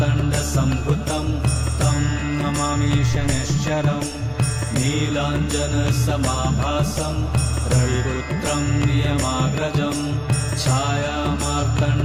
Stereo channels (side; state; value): both; identical; correlation 1.00